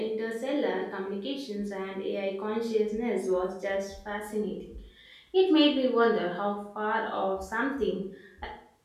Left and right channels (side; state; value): both; identical; correlation 1.00